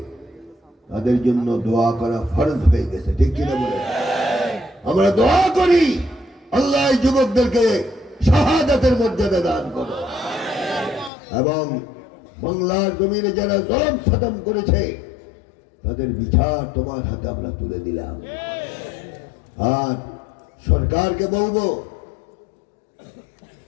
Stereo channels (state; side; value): drops out; right; at 11.1 s